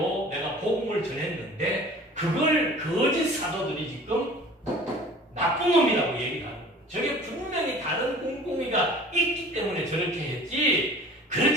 내가 복음을 전했는데 그걸 거짓 사도들이 지금 나쁜 놈이라고 얘기를 하는 거예요. 저게 분명히 다른 꿍꿍이가 있기 때문에 저렇게 했지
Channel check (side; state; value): both; normal; correlation 0.45